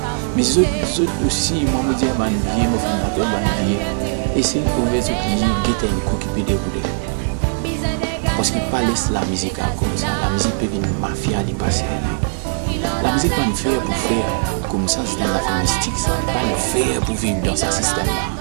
Mais ceux aussi, moi, je dis, je vais faire un billet. Et c'est pour les autres qui guettent un coup qui peut dérouler. Parce qu'ils ne pas laisser la musique comme ça. La musique peut venir mafia, les passer. La musique va nous faire pour faire comme ça, c'est une affaire mystique, ça va pas nous faire pour vivre dans ce système-là.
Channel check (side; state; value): left; silent; digital silence